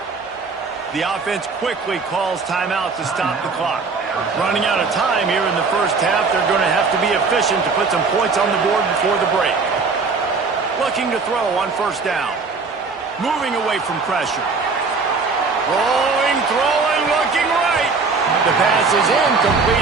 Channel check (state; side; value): quieter; left; 4.5 dB